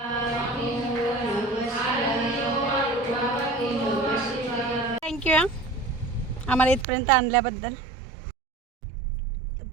थँक्यू आम्हाला इथपर्यंत आणल्याबद्दल.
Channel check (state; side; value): drops out; left; at 6.9 s